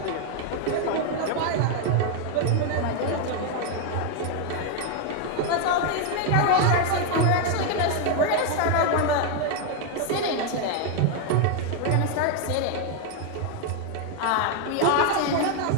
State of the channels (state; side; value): different; both; correlation 0.01